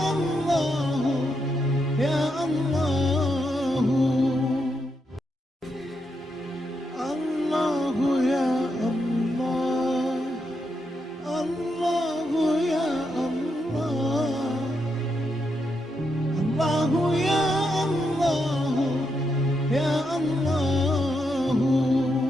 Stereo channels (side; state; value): both; normal; correlation 0.82